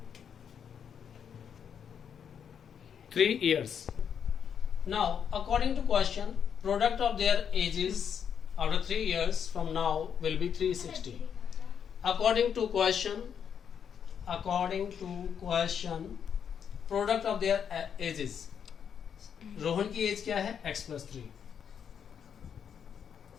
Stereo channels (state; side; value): quieter; right; 7.8 dB